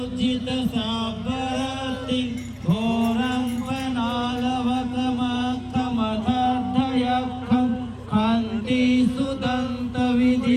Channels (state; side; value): identical; both; correlation 1.00